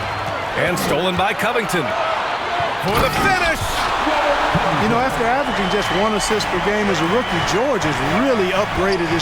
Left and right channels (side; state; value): both; identical; correlation 1.00